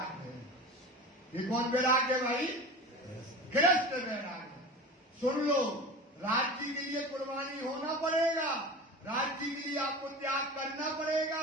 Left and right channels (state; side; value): normal; both; correlation 0.33